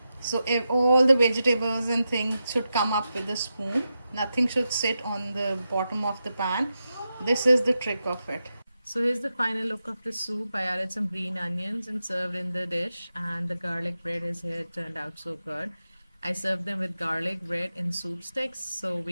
So if all the vegetables and things should come up with the spoon. Nothing should sit on the bottom of the pan. This is the trick of it. So here's the final look of the soup. I added some green onions and served in the dish, and the garlic bread is here. It turned out so good. I served them with garlic bread in soup sticks, so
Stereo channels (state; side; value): inverted; both; correlation -0.89